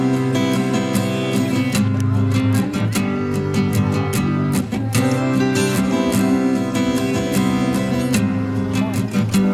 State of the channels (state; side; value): identical; both; correlation 1.00